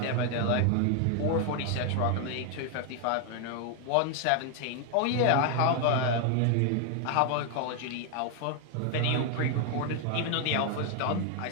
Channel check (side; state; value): both; different; correlation 0.00